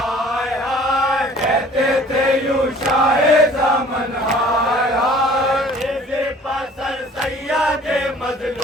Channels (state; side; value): normal; both; correlation 0.51